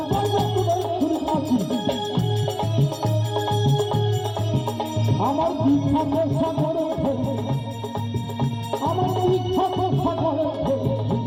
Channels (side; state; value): both; identical; correlation 1.00